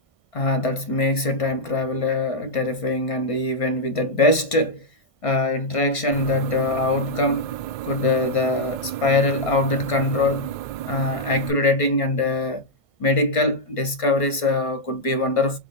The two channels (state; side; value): late; right; 1.6 ms